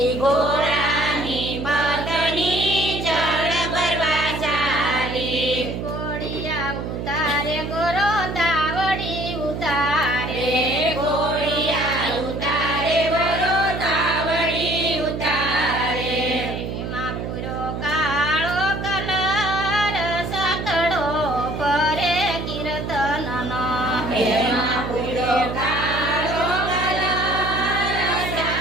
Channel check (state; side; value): noise; right; hum, 5 dB below the sound